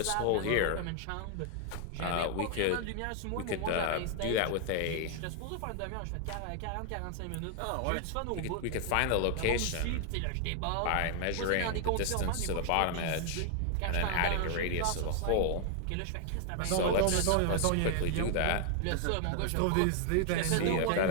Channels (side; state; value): both; different; correlation 0.00